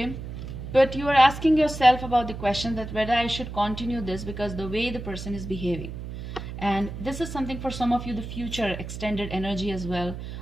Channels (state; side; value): noise; right; hum, 9 dB below the sound